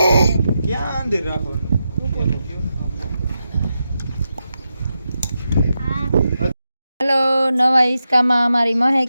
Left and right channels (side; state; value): both; inverted; correlation -0.88